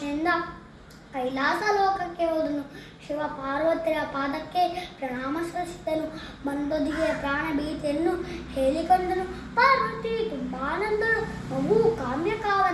ಕೈಲಾಸ ಲೋಕಕ್ಕೆ ಹೋದನು. ಶಿವ ಪಾರ್ವತಿಯ ಪಾದಕ್ಕೆ ಪ್ರಣಾಮ ಸಲ್ಲಿಸಿದನು. ಬಂದೊದಿಗೆ ಪ್ರಾಣ ಭೀತಿಯನ್ನು ಹೇಳಿಕೊಂಡನು. ಪಾರ್ವತಿ ತುಂಬಾ ನೊಂದಳು. ಮಗು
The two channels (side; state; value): both; identical; correlation 1.00